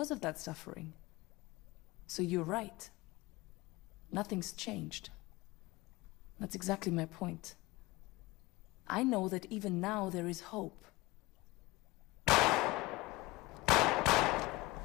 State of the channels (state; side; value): quieter; right; 21.4 dB